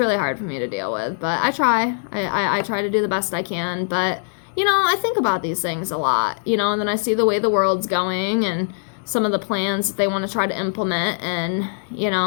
hard for me to deal with, but I try. I try to do the best I can, but, you know, I think about these things a lot, you know, and then I see the way the world's going, and some of the plans that they want to try to implement, and, you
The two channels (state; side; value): silent; right; digital silence